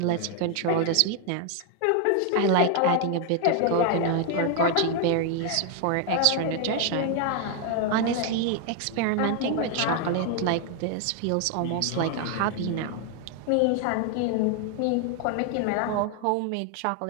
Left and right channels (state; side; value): different; both; correlation 0.00